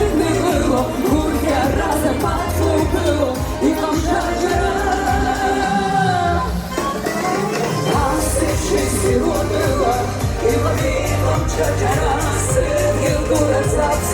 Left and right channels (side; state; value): both; identical; correlation 1.00